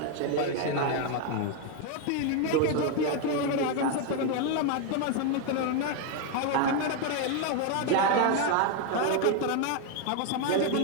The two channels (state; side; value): different; both; correlation 0.01